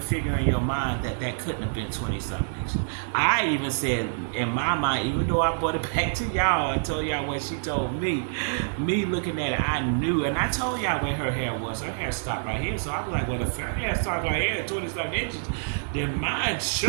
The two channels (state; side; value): silent; left; digital silence